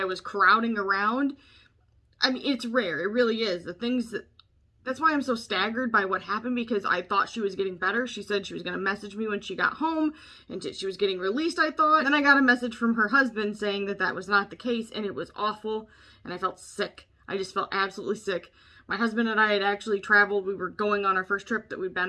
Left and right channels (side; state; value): both; identical; correlation 1.00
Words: was crowding around, I mean, it's rare. It really is. That's why I'm so staggered by what happened, because I thought she was getting better. She said she was going to message me when she got home and she was getting released, I thought. And then I got a message from her husband saying that that was not the case, and it was awful, and I felt sick. I just felt absolutely sick. My husband and I had actually traveled. We were going on our first trip that we'd